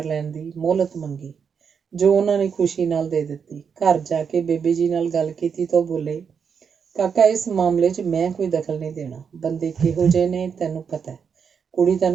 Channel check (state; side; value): quieter; left; 6.6 dB